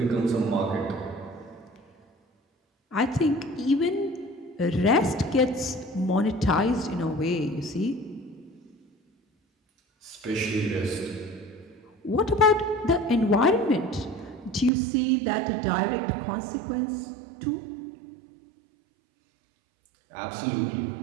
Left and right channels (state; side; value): drops out; left; at 14.7 s